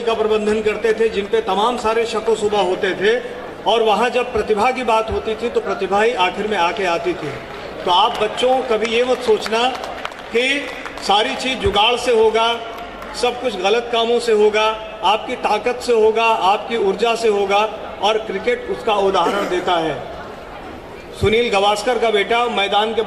का प्रबंधन करते थे, जिन पे तमाम सारे शको शुबा होते थे, और वहाँ जब प्रतिभा की बात होती थी तो प्रतिभा ही आखिर में आके आती थी। तो आप बच्चों कभी ये मत सोचना कि सारी चीज़ जुगाड़ से होगा, सब कुछ गलत कामों से होगा। आपकी ताकत से होगा, आपकी ऊर्जा से होगा, और क्रिकेट उसका उदाहरण देता है। सुनील गावस्कर का बेटा मैदान के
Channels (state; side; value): identical; both; correlation 1.00